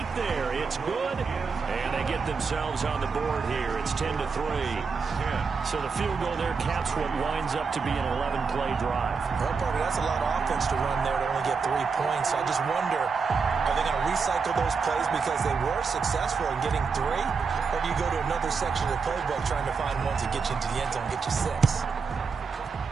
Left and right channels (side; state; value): left; quieter; 5.2 dB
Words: there. It's good. And they get themselves on the board here. It's 10-3. So the field goal there caps what winds up to be an 11-play drive. Well, Parker, that's a lot of offense to run there to only get 3 points. I just wonder, are they going to recycle those plays because they were successful in getting 3? Or do you go to another section of the playbook trying to find ones that get you into the end zone and get you 6?